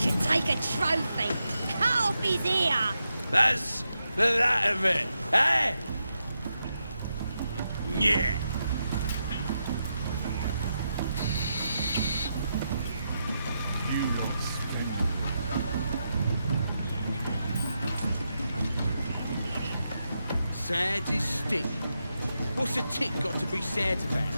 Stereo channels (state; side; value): inverted; both; correlation -0.85